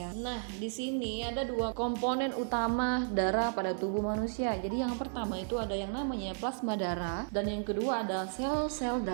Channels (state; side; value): silent; left; 56 dB below the other